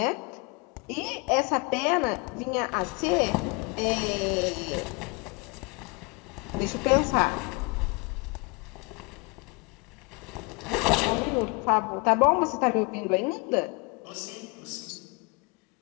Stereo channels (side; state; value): right; quieter; 28.9 dB